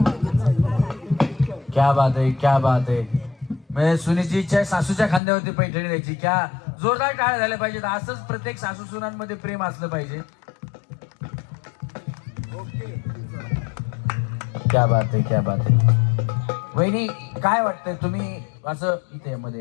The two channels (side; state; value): right; drops out; at 5.2 s